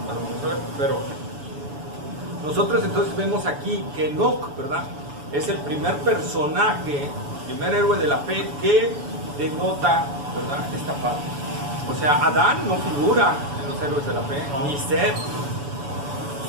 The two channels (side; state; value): left; late; 7.0 ms